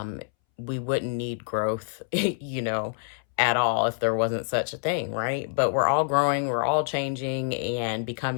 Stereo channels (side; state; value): right; silent; 60 dB below the other